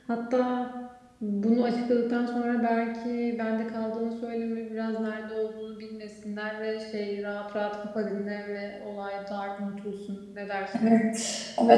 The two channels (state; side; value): identical; both; correlation 1.00